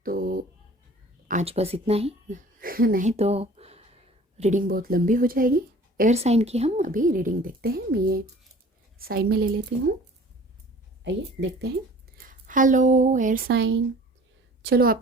तो आज बस इतना ही नहीं तो रीडिंग बहुत लंबी हो जाएगी। एयर साइन की हम अभी रीडिंग देखते हैं। मैं ये साइड में ले लेती हूँ, आइए देखते हैं। हेलो एयर साइन, चलो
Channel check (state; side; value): normal; both; correlation 0.48